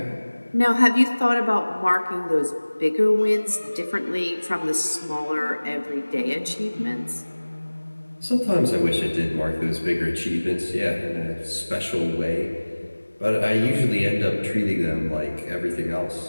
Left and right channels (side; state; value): both; inverted; correlation -1.00